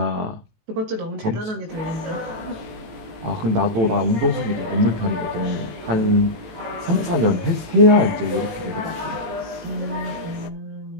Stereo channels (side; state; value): left; late; 18 ms